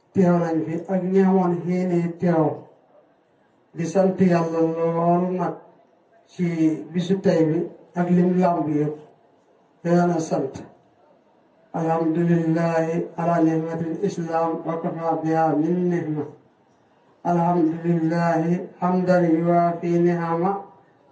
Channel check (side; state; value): both; identical; correlation 1.00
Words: teew nañ fi ak ñi amoon xéene teew di sant yàlla lool nag ci bisu tey bi ak lim làmb yëpp yàlla sant alhamdulillahi ala ni'matil islam wa kafa biha min nihma alhamdulillahi hamdan yuwaafi ni'ama